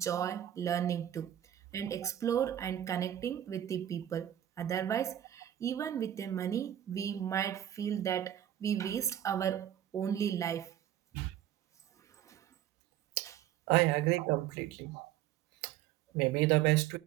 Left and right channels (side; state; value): left; quieter; 11.5 dB